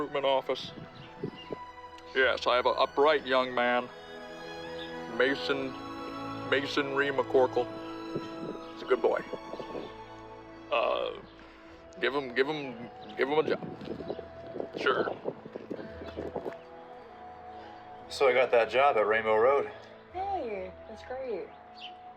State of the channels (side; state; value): both; identical; correlation 1.00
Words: office? Yes, I have a bright young man. Masonry McCORKLE. He's a good boy. Give him a job. Sure. So I got that job at Rainbow Road. Hey, that's great.